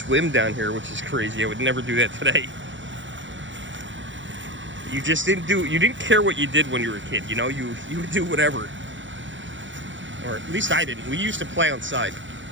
down here, which is crazy. I would never do that today. You didn't care what you did when you were a kid, you know? You would do whatever. Or at least I didn't. We used to play outside.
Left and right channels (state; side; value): late; left; 0.55 ms